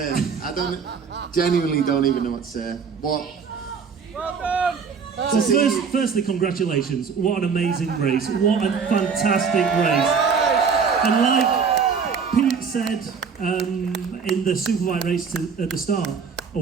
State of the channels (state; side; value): quieter; left; 5.9 dB